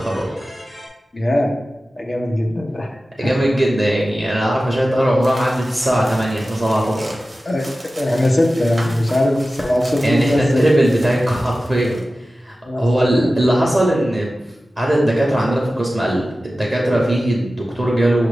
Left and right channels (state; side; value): normal; both; correlation 0.95